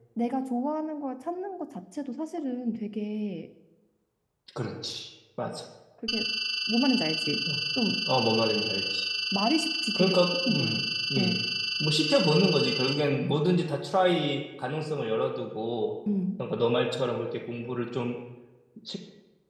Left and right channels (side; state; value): both; identical; correlation 1.00